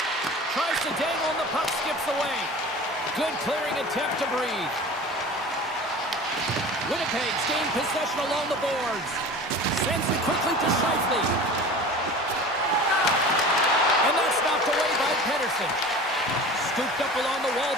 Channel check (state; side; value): normal; both; correlation 0.38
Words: Tries to dangle and the puck skips away. Good clearing attempt to breathe. Winnipeg's gained possession along the boards. Sends it quickly to Scheifele. And that's knocked away by Pedersen. Scooped up along the wall